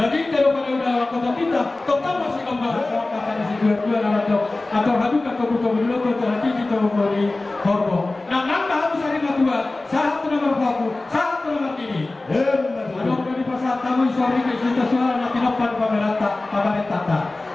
kalau pada udah kota kita, total masih kembali sok kata di sekitar masuk. Atau hadu kata butuh dulu kata hati kita memberi hormo. Nah, nambah harus hari kedua, satu nomor baku, satu nomor ini. Ada dari pasar tamu sore ke cerita suara nanti depan pamerintah.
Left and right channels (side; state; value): right; quieter; 3.0 dB